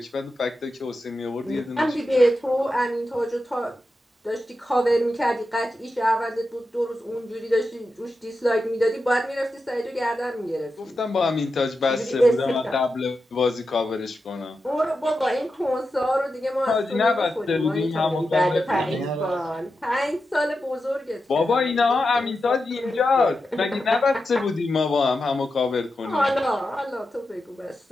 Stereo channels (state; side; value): normal; both; correlation 0.89